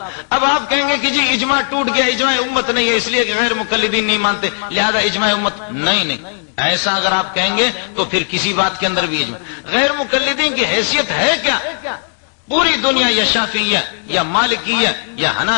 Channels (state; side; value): silent; right; 69 dB below the other